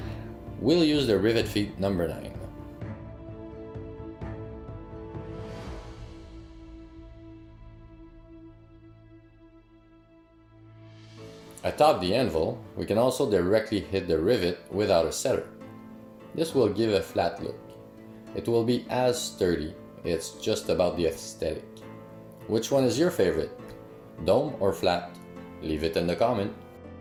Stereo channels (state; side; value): identical; both; correlation 1.00